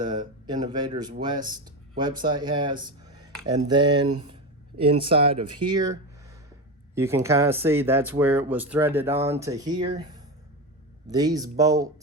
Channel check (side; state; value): both; normal; correlation 0.18